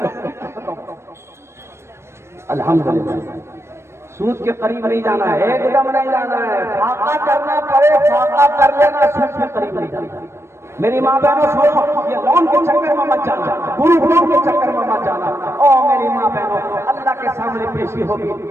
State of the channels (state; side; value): late; left; 0.13 ms